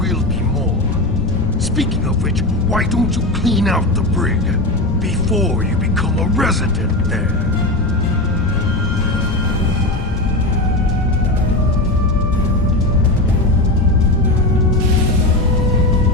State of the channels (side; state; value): left; noise; rumble, 7 dB below the sound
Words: be more. Speaking of which, why don't you clean out the brig before you become a resident there?